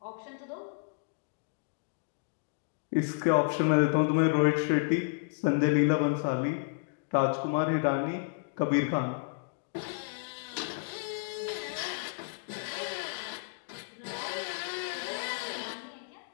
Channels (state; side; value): silent; right; digital silence